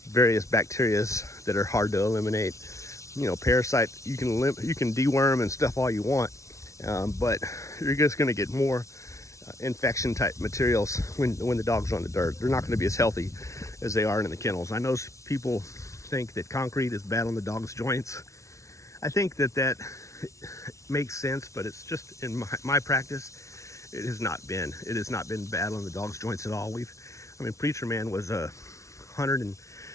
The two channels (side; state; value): right; late; 0.14 ms